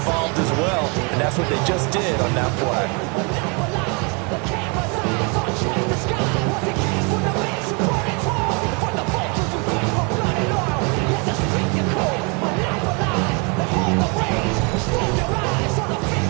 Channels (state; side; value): quieter; left; 32.8 dB